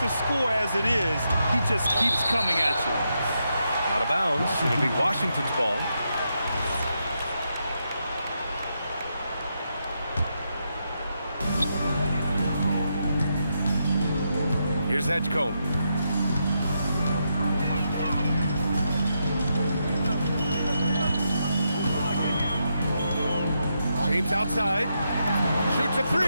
score as it is, he just keeps coming at you. Out of bounds. It'll be Washington's ball. Here's Edgecombe. James outside. Shoots a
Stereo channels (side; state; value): both; inverted; correlation -0.82